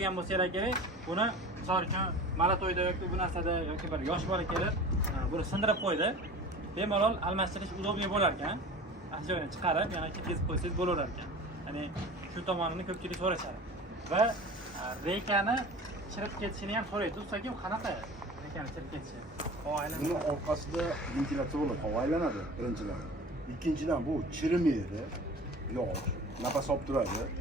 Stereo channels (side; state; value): both; normal; correlation 0.38